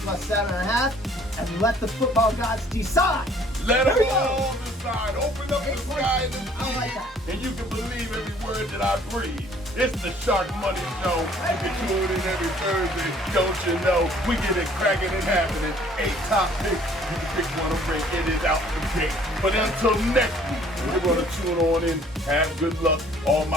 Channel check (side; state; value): both; normal; correlation 0.57